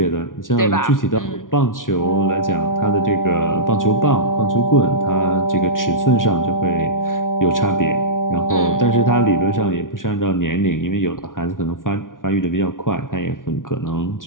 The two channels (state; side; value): late; right; 0.89 ms